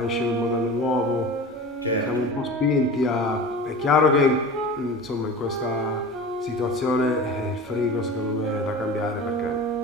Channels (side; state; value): both; normal; correlation 0.34